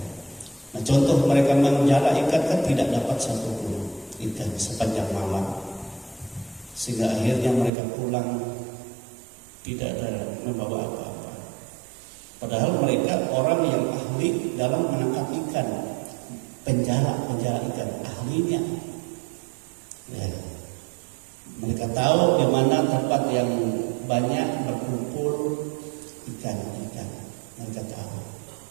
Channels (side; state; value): left; drops out; at 7.7 s